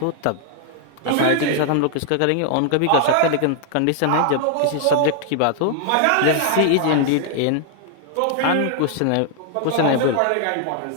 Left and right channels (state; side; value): different; both; correlation 0.00